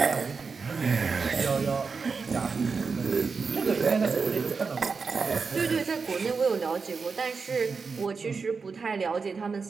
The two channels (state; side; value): quieter; left; 5.0 dB